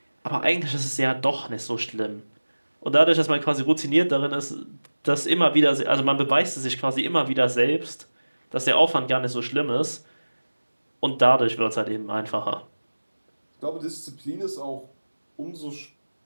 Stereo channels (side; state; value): both; inverted; correlation -1.00